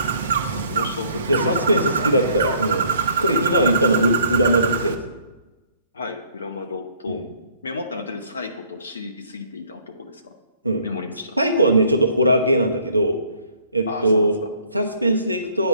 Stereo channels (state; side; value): inverted; both; correlation -0.61